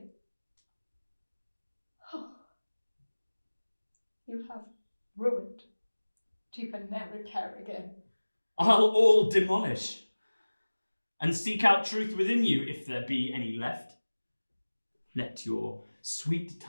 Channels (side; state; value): both; inverted; correlation -1.00